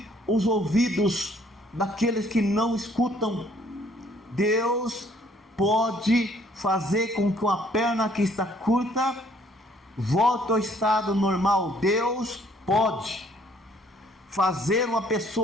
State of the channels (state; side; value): normal; both; correlation 0.62